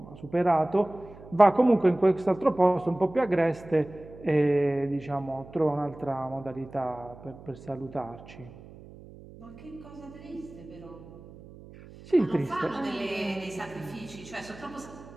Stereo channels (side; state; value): right; noise; hum, 19 dB below the sound